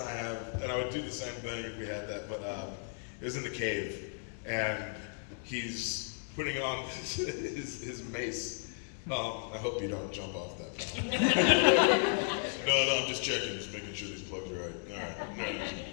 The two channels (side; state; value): right; silent; 55 dB below the other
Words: I have, and I would do the same thing if we had that. But it was in the cave, and he's putting on his mace. I hope you don't jump off that. No, I'm just checking, just making sure these plugs are right. All right, no,